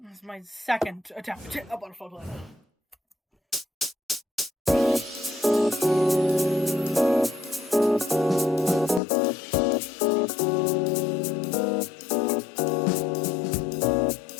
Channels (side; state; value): right; drops out; at 9.0 s